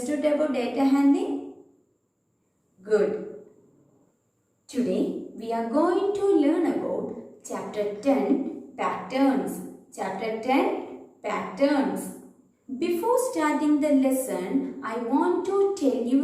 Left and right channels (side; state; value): both; identical; correlation 1.00